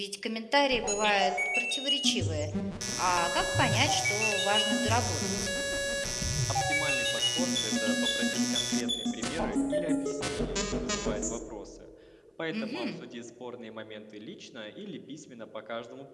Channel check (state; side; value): identical; both; correlation 1.00